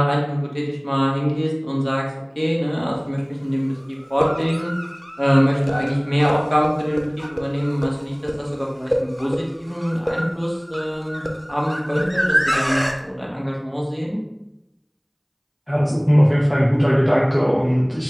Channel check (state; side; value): identical; both; correlation 1.00